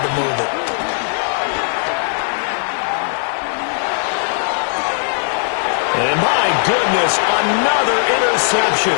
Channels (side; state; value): right; silent; 68 dB below the other